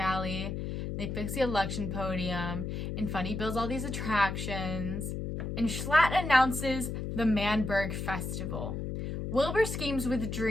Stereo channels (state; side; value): noise; left; hum, 4 dB below the sound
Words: they fix the election podium, and Fundy builds all these attractions. And Schlatt announces the Berg Festival. Wilbur schemes with